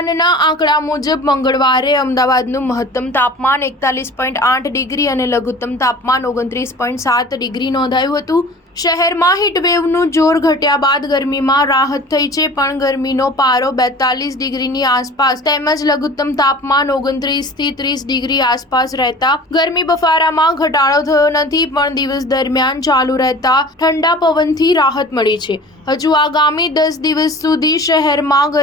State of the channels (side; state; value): both; normal; correlation 0.42